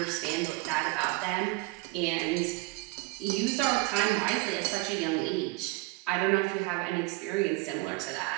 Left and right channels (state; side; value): quieter; left; 23.1 dB